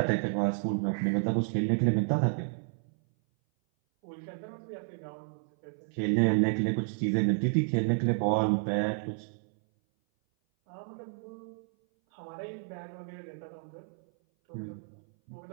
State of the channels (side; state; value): left; silent; 57 dB below the other